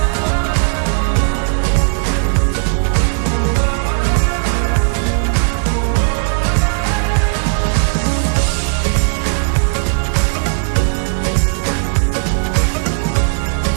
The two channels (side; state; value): left; silent; digital silence